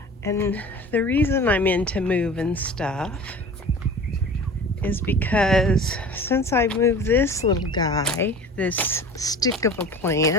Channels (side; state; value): both; normal; correlation 0.40